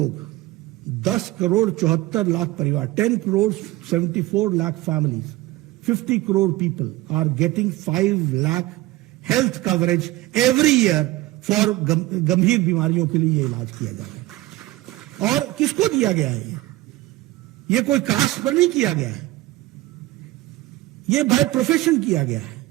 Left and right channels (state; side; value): quieter; left; 18.0 dB